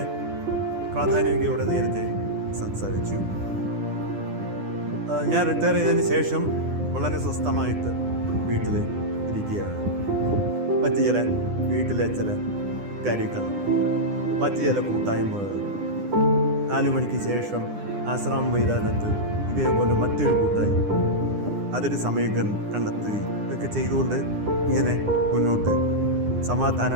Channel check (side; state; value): left; late; 9.9 ms